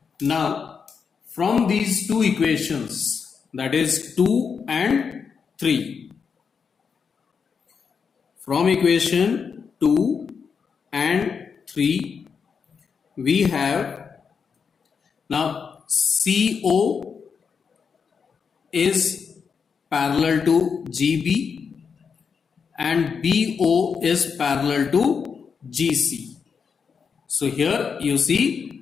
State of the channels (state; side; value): quieter; right; 6.1 dB